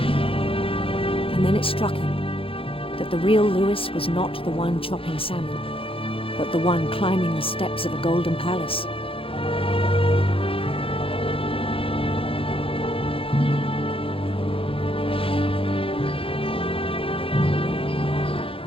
And then it struck him that the real Louis was not the one chopping salmon, but the one climbing the steps of a golden palace.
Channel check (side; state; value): right; late; 0.27 ms